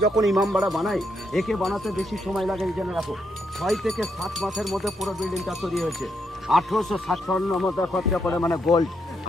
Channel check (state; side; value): normal; both; correlation 0.78